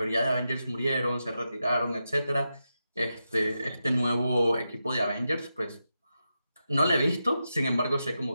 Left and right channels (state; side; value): inverted; both; correlation -0.88